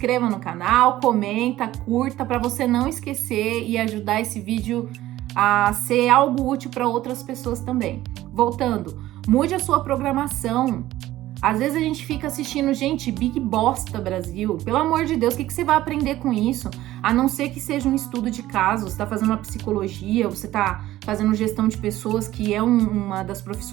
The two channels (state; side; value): quieter; left; 15.2 dB